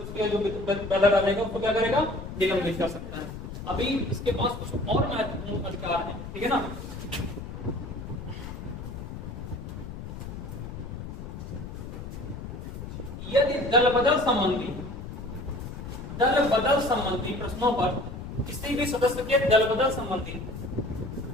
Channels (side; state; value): left; noise; rumble, 9 dB below the sound